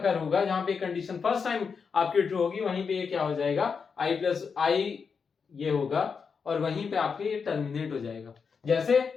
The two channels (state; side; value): quieter; right; 5.8 dB